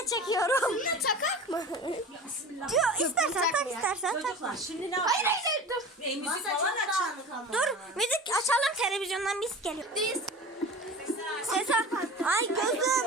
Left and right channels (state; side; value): normal; both; correlation 0.35